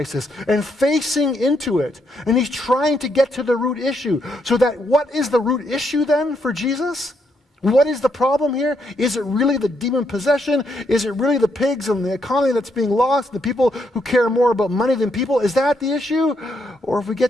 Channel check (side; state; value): both; normal; correlation 0.76